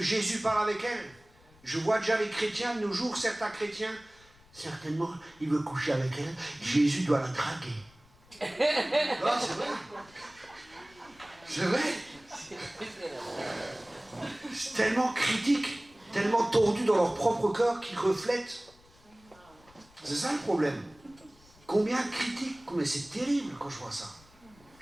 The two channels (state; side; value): noise; left; rumble, 27 dB below the sound